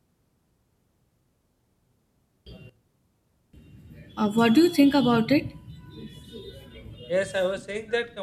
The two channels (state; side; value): identical; both; correlation 1.00